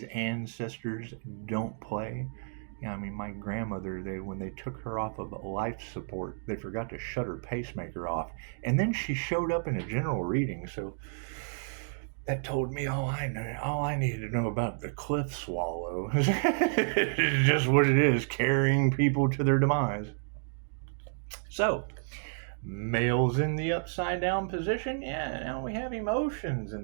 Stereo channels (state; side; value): silent; left; 57 dB below the other